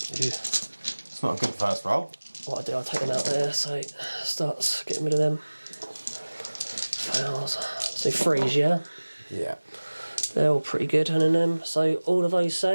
It's not a good first roll. What I do, I take them out there, so it starts getting rid of them. Fails. So freeze, yeah? Yeah. They're all pretty good, and then so all of those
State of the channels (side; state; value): both; inverted; correlation -1.00